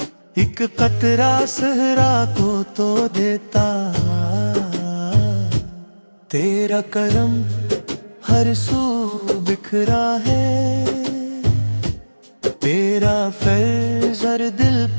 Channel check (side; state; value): both; inverted; correlation -1.00